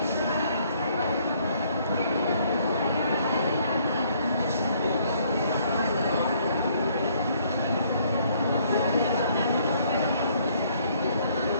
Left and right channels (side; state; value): both; inverted; correlation -0.65